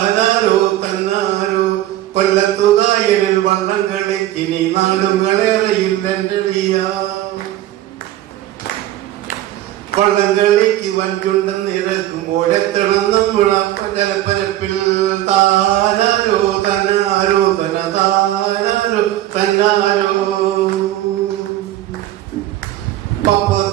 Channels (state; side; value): quieter; left; 13.9 dB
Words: തന്നാരോ കൊല്ലത്തുകായലിൽ വള്ളം കളിക്കിനി നാടുകളേറയിൽ എന്തളിയ വള്ളംകളിക്ക് വഞ്ചുണ്ടെന്ന് ഇറക്കുമ്പോഴെത്തണം നമ്മളപ്പ ജലപ്പരപ്പിൽ താനാരോ തന്നാരോ തന താനാരോ തന്നാരോ